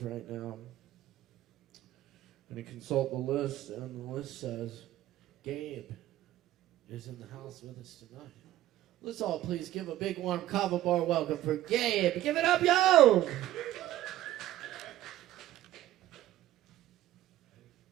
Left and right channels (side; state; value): left; quieter; 14.1 dB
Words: right now. I'm going to consult the list, and the list says Gabe is in the house with us tonight. Let's all please give a big warm Kava bar welcome for Gabe. Give it up, yo!